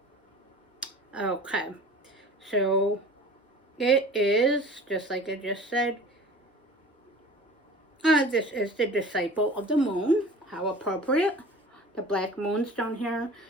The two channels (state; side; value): normal; both; correlation 0.42